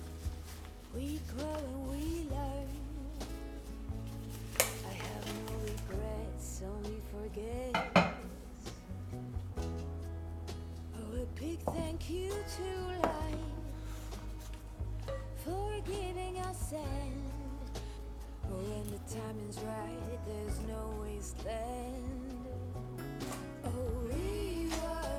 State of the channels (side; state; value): both; identical; correlation 1.00